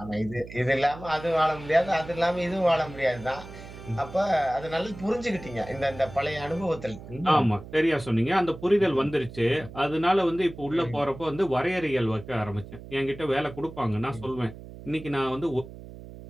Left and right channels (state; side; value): noise; right; hum, 15 dB below the sound